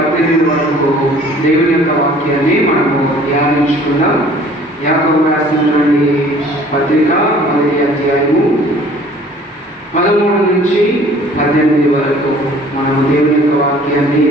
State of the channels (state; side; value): normal; both; correlation 0.52